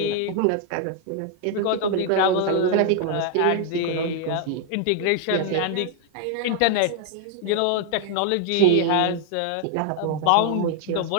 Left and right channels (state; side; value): different; both; correlation 0.00